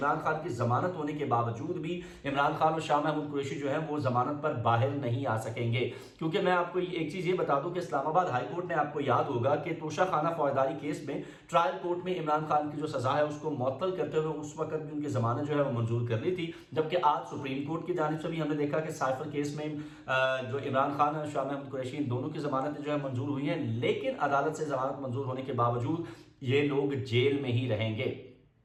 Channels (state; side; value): identical; both; correlation 1.00